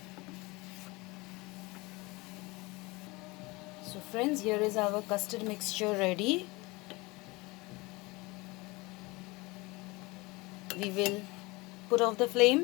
So friends, here is our custard mixture ready. We will put off the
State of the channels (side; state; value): right; quieter; 23.8 dB